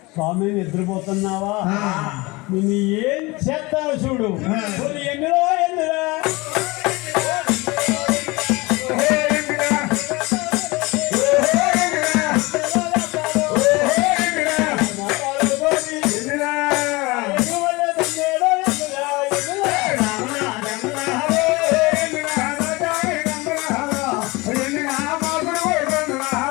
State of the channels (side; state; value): right; quieter; 23.4 dB